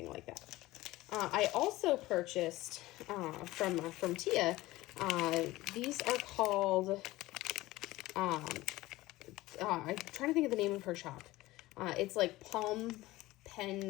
like that. I also purchased from Tia. These are called. I'm trying to think of the name of her shop. It's like Palm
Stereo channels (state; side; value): quieter; right; 18.3 dB